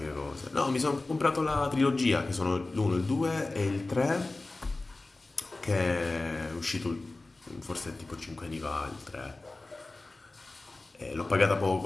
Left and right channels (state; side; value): quieter; right; 3.2 dB